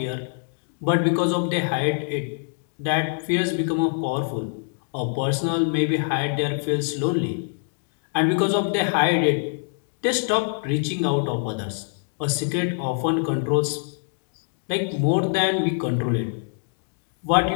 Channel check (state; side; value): silent; right; digital silence